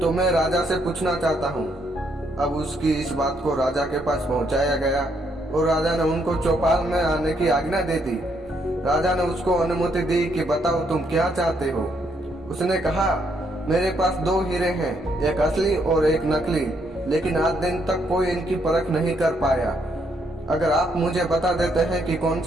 मैं राजा से पूछना चाहता हूँ। अब उसकी इस बात को राजा के पास पहुँचाया गया और राजा ने उनको चौपाल में आने की आज्ञा दे दी। राजा ने उसको अनुमति दी कि बताओ तुम क्या चाहते हो। उसने कहा, मेरे पास 2 हीरे हैं, एक असली और एक नकली, लेकिन आज दिन तक कोई इनकी परख नहीं कर पाया। अगर आप मुझे बता देते हैं कि कौन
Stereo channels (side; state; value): both; normal; correlation 0.74